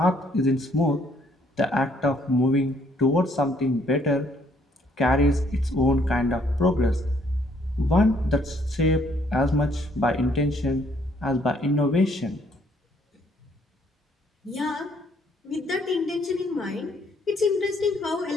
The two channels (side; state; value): both; normal; correlation 0.66